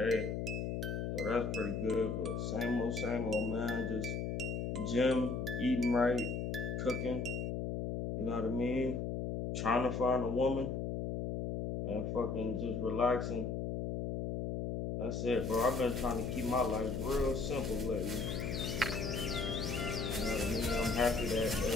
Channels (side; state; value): left; noise; hum, 2 dB below the sound